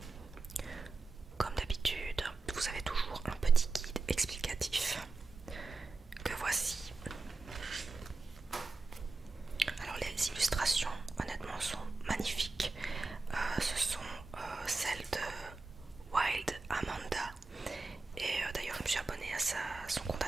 Comme d'habitude, vous avez toujours un petit guide explicatif que voici. Alors les illustrations honnêtement sont magnifiques. Ce sont celles de Wild Amanda. Et d'ailleurs je me suis abonnée à son compte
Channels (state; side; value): quieter; left; 3.8 dB